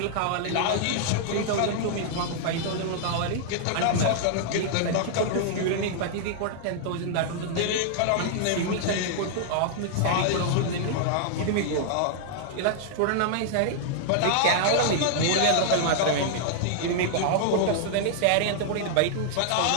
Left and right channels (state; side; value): different; both; correlation -0.01